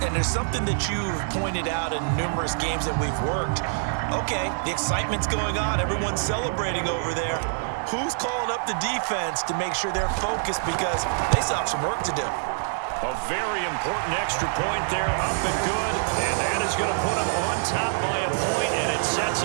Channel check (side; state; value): left; silent; digital silence